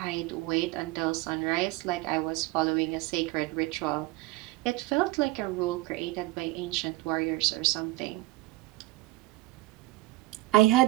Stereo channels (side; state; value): left; quieter; 19.1 dB